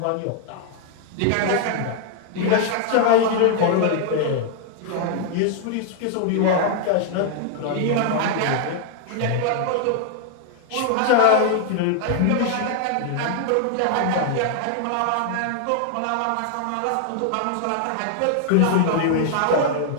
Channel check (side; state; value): both; different; correlation 0.00